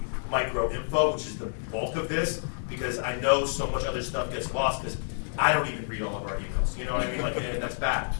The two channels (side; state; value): right; silent; digital silence